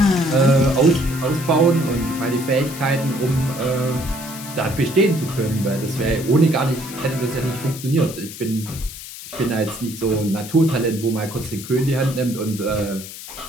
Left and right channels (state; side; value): noise; left; hiss, 12 dB below the sound